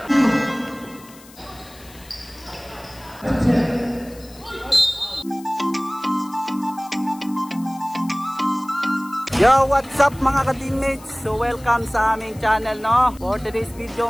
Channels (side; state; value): left; noise; hiss, 22 dB below the sound